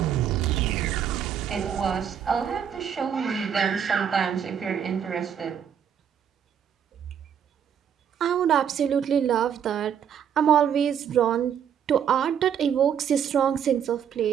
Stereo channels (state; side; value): quieter; left; 8.4 dB